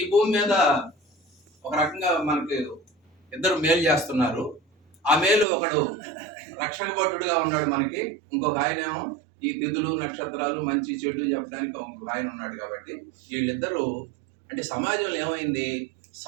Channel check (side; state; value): left; drops out; at 5.5 s